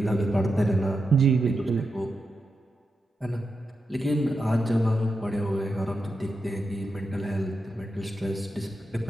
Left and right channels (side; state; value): both; normal; correlation 0.88